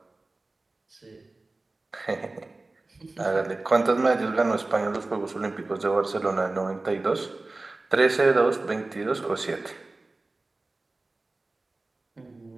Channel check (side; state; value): left; quieter; 3.2 dB